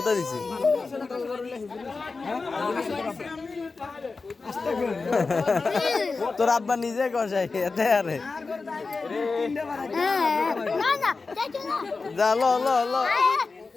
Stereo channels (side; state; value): right; quieter; 4.1 dB